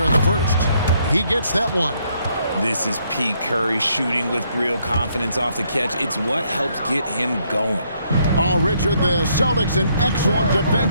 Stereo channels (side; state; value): both; inverted; correlation -0.71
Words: in the first. He gets that one. This is Pete Curry shooting with real confidence off the catch. It's what helps get him going. Oh, Richard, the Celtics, an excellent